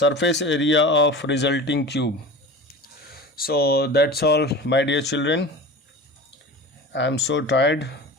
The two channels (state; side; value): normal; both; correlation 0.34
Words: area of resulting cube। So that's all, my dear children. I am so tired.